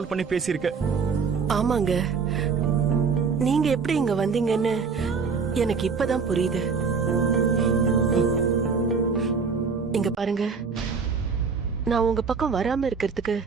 பண்ணி பேசியிருக்க. ஆமாங்க, நீங்க எப்படி இங்க வந்தீங்கன்னு எனக்கு இப்பதான் புரியுது. இங்க பாருங்க, நான் உங்க பக்கம் வராம இருக்கிறதுக்கு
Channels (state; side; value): quieter; left; 5.4 dB